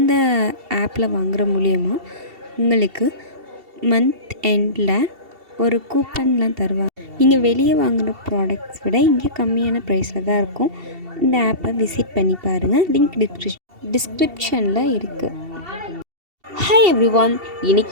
ஆப்பில் வாங்குகிற மூலியமாக உங்களுக்கு மந்த் எண்டில் ஒரு கூப்பன்லாம் தருவாங்க. நீங்கள் வெளியே வாங்குகிற ப்ராடக்ட்ஸ் விட இங்கே கம்மியான ப்ரைஸில் தான் இருக்கும். இந்த ஆப்பை விசிட் பண்ணி பாருங்கள். லிங்க் டிஸ்கிரிப்ஷனில் இருக்குது. ஹாய் எவ்ரிவான்,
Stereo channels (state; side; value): late; left; 2.7 ms